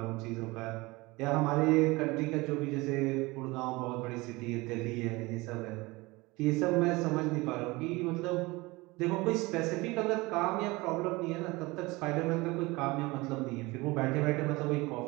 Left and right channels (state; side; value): quieter; left; 22.7 dB